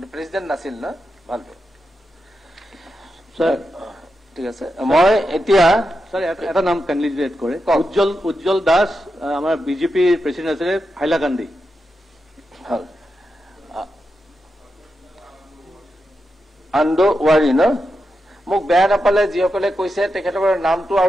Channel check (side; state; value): both; normal; correlation 0.88